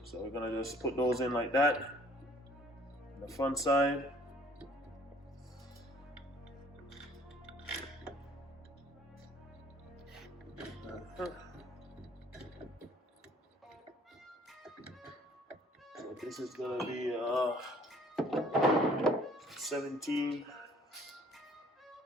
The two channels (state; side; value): normal; both; correlation 0.57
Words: So we're gonna just put those in like that on the front side. So this is gonna be 17.